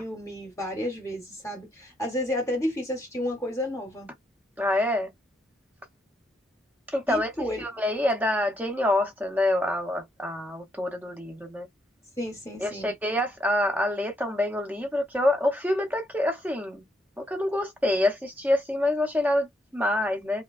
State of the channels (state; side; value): normal; both; correlation 0.76